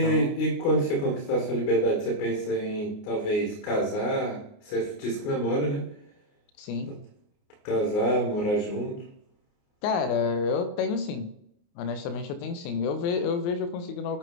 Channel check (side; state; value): right; late; 29 ms